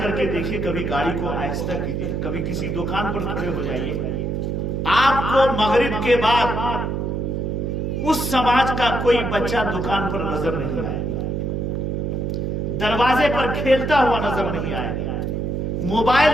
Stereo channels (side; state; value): right; noise; hum, 1 dB below the sound